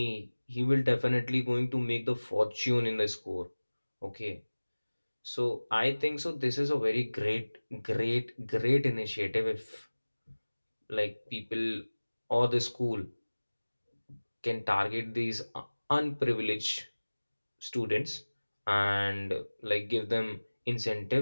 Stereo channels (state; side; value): inverted; both; correlation -1.00